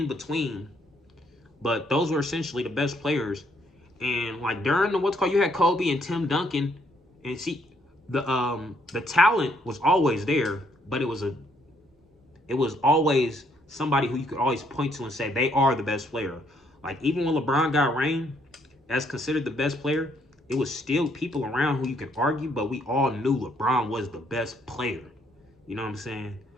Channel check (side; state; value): both; normal; correlation 0.70